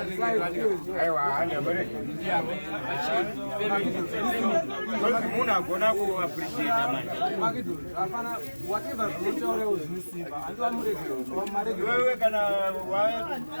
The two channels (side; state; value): both; inverted; correlation -1.00